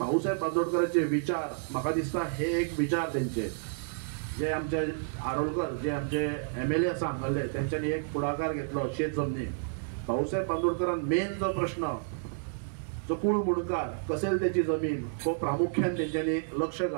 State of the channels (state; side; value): silent; left; digital silence